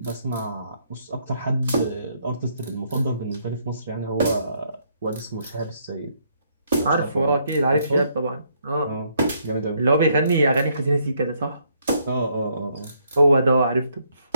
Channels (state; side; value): inverted; both; correlation -0.71